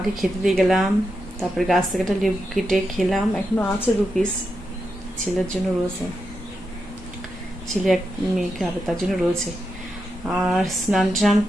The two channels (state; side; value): normal; both; correlation 0.86